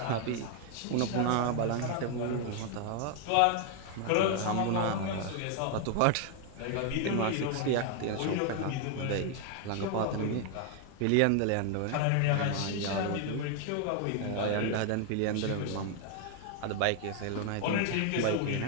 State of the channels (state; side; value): different; both; correlation 0.00